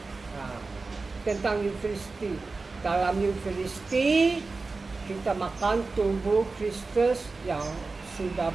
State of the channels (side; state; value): left; quieter; 3.9 dB